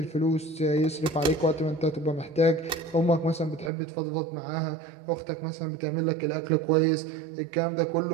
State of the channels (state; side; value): drops out; left; at 3.7 s